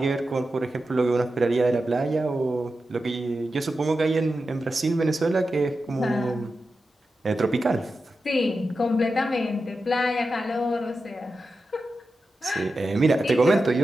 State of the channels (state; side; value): normal; both; correlation 0.91